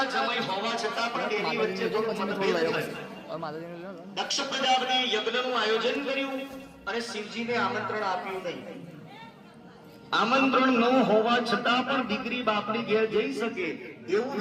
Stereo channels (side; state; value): both; identical; correlation 1.00